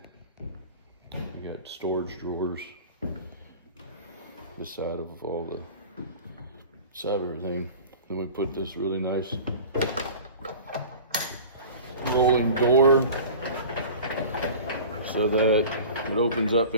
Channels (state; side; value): inverted; both; correlation -0.39